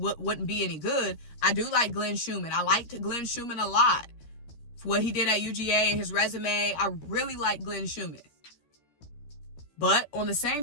wouldn't be any good. I do like Glenn Schumann. I liked Glenn Schumann a lot. For what he did at UGA and his resume, I really like Glenn Schumann. But on the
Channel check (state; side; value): late; right; 13 ms